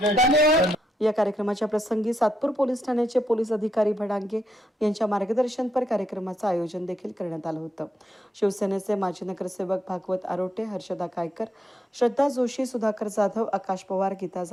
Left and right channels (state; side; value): normal; both; correlation 0.80